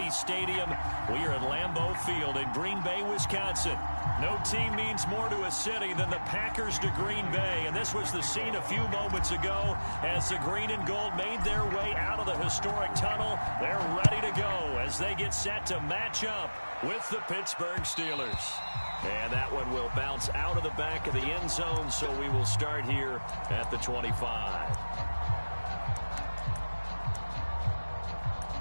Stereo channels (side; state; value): both; inverted; correlation -1.00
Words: Stadium. We are at Lambeau Field in Green Bay, Wisconsin. No team means more to a city than the Packers to Green Bay, and this was the scene a few moments ago as the green and gold made their way out of the historic tunnel. They're ready to go as they get set to match up with the Pittsburgh Steelers. And that one will bounce out of the back of the end zone, so we will start here at the 25.